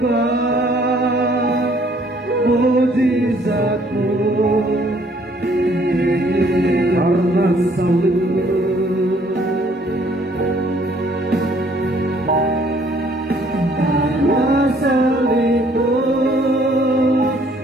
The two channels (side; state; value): both; normal; correlation 0.62